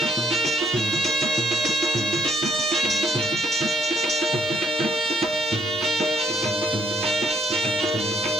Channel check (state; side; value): noise; right; hiss, 29 dB below the sound